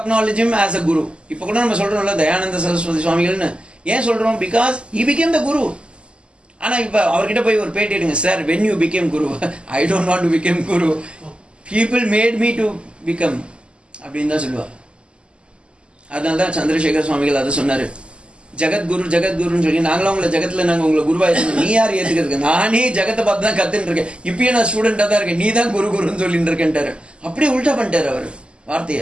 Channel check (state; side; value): late; left; 0.052 ms